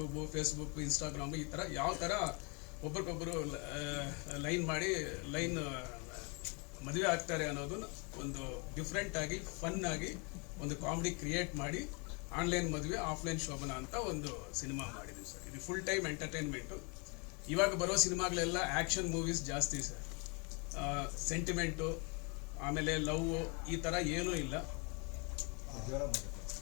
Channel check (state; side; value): quieter; right; 33.1 dB